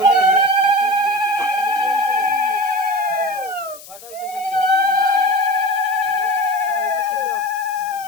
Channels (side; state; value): left; noise; hiss, 18 dB below the sound